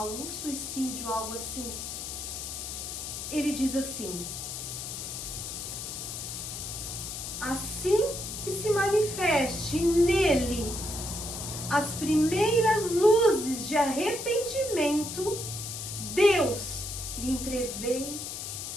um suicídio, algo assim. Ele diz assim: assim que se manifeste nele as primeiras luzes de arrependimento, Deus lhe entrevê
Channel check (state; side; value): noise; left; hiss, 6 dB below the sound